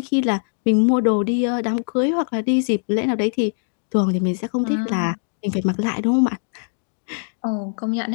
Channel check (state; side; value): silent; right; digital silence